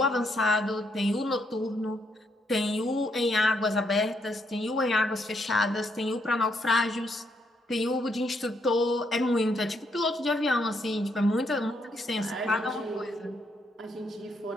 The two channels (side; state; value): both; normal; correlation 0.75